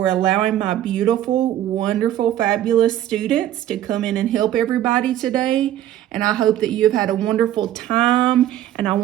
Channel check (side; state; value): left; quieter; 12.2 dB